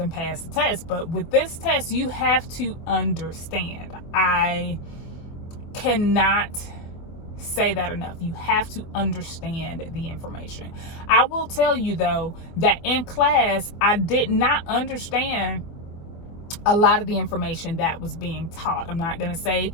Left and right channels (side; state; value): right; late; 24 ms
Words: pass the test. But with this test, you have to understand. I cannot say that enough. You have to understand the information. I will tell you though, that in class, I did not understand a lot of the information that was being taught. I'm not going to say